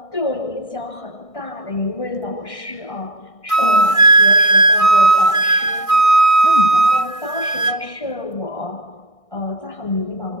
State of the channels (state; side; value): late; right; 1.6 ms